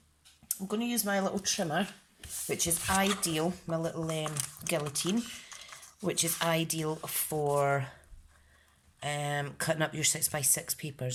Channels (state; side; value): identical; both; correlation 1.00